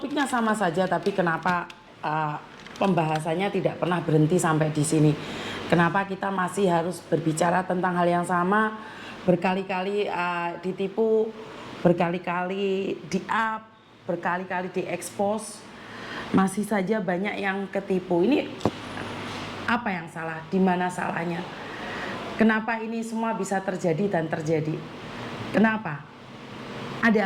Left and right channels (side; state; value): both; identical; correlation 1.00